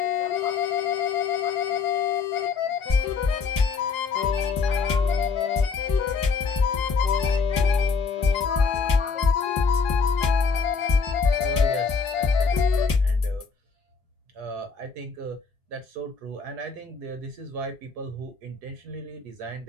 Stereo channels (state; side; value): quieter; right; 5.0 dB